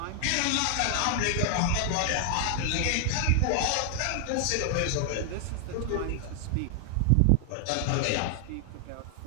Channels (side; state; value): both; different; correlation 0.00